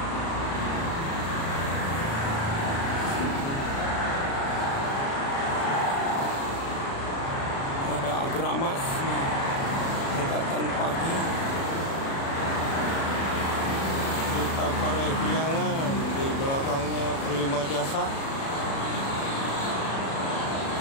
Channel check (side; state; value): right; late; 36 ms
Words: Gramas dekatan pagi, Duta Parahyangan di belakangnya Prima Jasa.